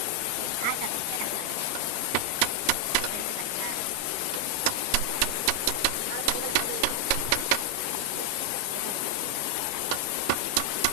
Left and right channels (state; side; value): different; both; correlation 0.00